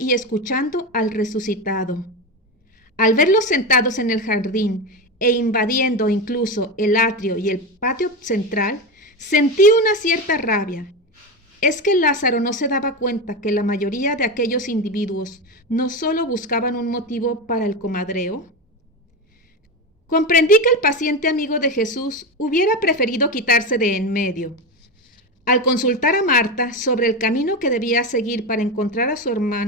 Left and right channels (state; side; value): normal; both; correlation 0.17